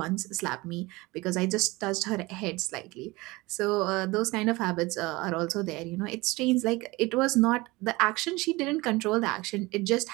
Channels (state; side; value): quieter; left; 22.1 dB